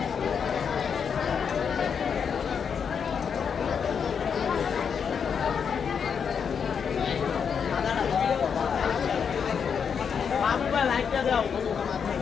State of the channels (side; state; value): right; quieter; 6.8 dB